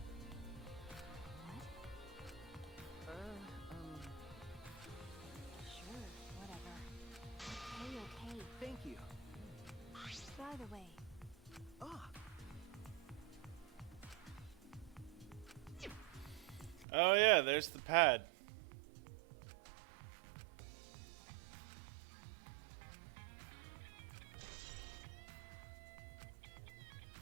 Sure, whatever. Okay. thank you. By the way, Oh yeah, there's the pad.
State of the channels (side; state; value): left; drops out; at 16.9 s